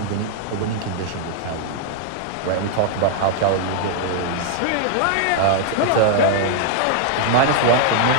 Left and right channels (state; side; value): different; both; correlation -0.01